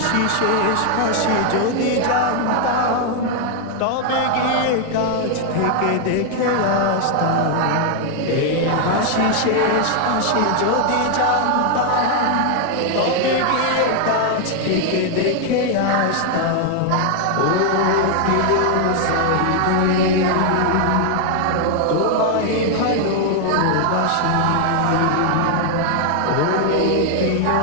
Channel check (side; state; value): both; different; correlation 0.00